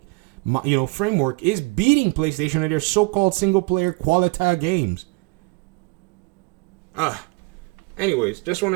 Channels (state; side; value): quieter; left; 28.7 dB